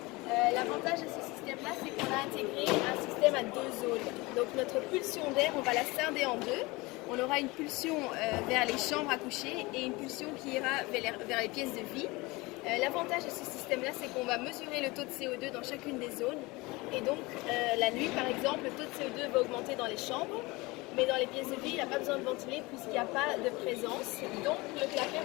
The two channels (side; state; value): right; quieter; 23.2 dB